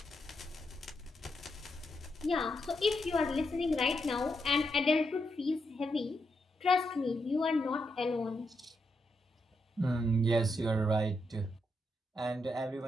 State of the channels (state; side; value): normal; both; correlation 0.82